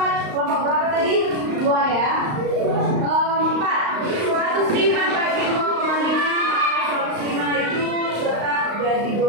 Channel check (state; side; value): late; left; 35 ms